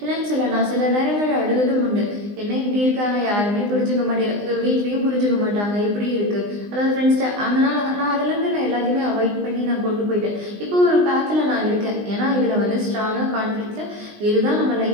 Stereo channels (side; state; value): left; late; 20 ms